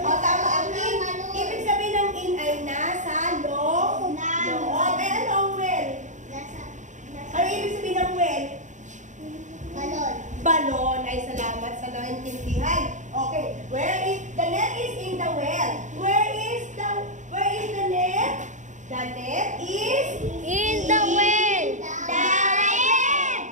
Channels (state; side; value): late; left; 0.36 ms